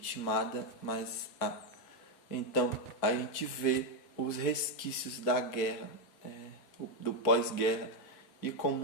mas há. Então a gente vê os resquícios da guerra, do pós-guerra, e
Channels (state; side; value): late; right; 4.5 ms